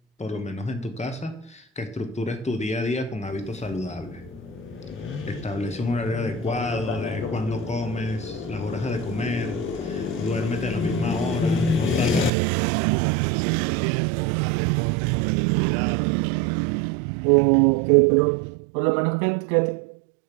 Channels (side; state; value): left; drops out; at 12.3 s